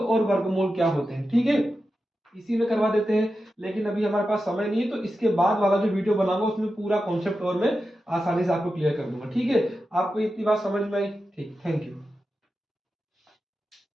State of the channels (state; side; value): normal; both; correlation 0.91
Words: वर्गमूल क्या होते हैं, ठीक है, इसी में करवा देते हैं, लेकिन अभी हमारे पास समय नहीं है, तो इसके बाद वाला जो वीडियो बनाऊंगा उसमें पूरा कॉन्सेप्ट और मैं आसानी से आपको क्लियर कर दूंगा, ठीक है, आपको इतनी बात समझ में आई, ठीक, थैंक यू।